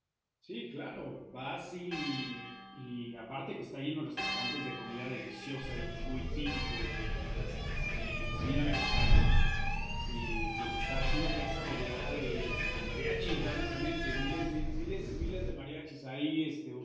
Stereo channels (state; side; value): identical; both; correlation 1.00